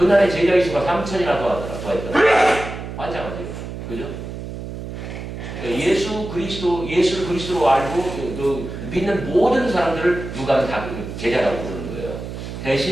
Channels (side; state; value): right; noise; hum, 9 dB below the sound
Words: 제자의 수가 3천이나 더했더라. 환장하죠. 그죠? 예수를 그리스도로 알고 믿는 모든 사람들을 누가는 다 제자라고 부르는 거예요.